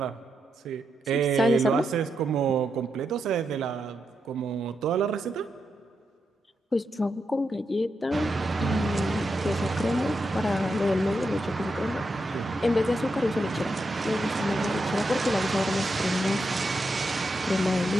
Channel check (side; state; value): both; normal; correlation 0.85